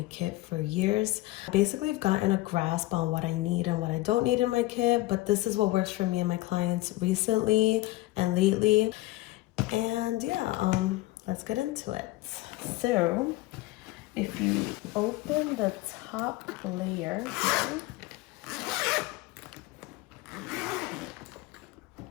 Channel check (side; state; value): right; quieter; 18.6 dB